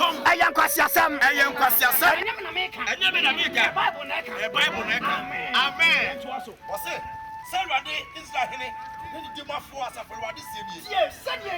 Ayan kwase asem. Ayan kwase asem. Enem na meka. Enem na meka. Bible na ka. Bible na ka. Amen. Wose Sarade Israel hene. Ni di mafo asafo wade sebie. Ye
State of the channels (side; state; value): both; identical; correlation 1.00